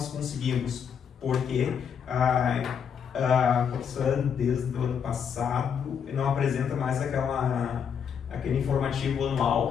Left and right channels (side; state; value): right; quieter; 7.4 dB